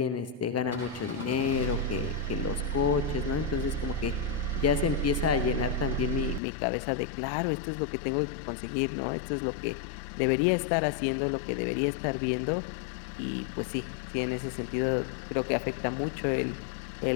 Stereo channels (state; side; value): drops out; right; at 6.4 s